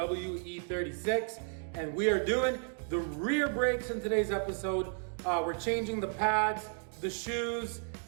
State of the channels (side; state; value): left; silent; 56 dB below the other